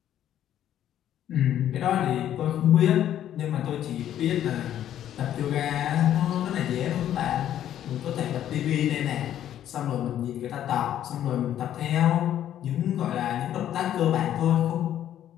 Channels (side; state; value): right; quieter; 11.2 dB